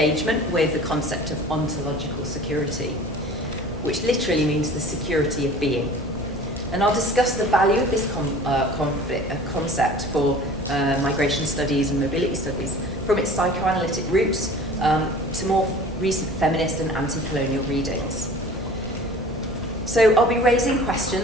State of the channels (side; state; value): both; normal; correlation 0.44